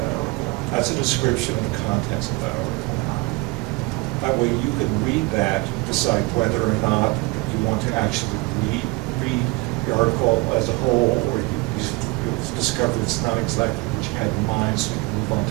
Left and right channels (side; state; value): left; quieter; 24.7 dB